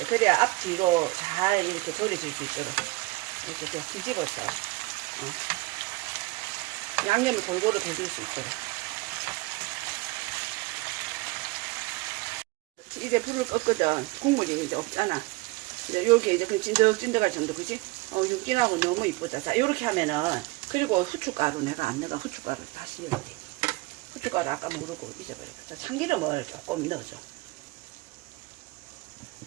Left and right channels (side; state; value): left; quieter; 22.6 dB